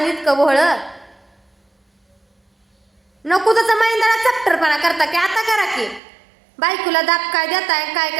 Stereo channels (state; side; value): drops out; left; at 6.0 s